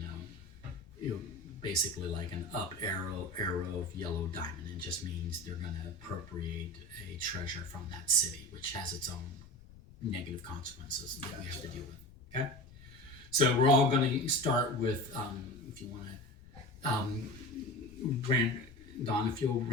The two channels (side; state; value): left; noise; rumble, 21 dB below the sound